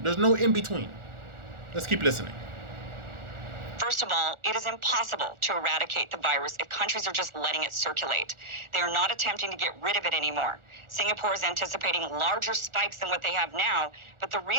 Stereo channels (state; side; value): late; left; 1.4 ms